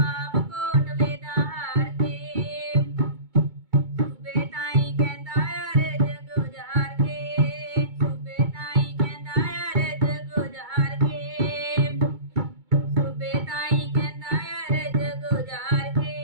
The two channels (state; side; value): late; left; 2.2 ms